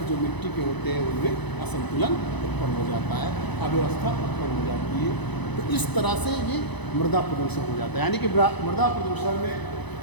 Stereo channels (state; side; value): late; right; 1.0 ms